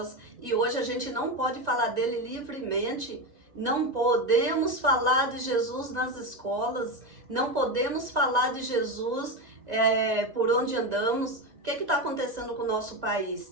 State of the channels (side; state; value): left; late; 1.9 ms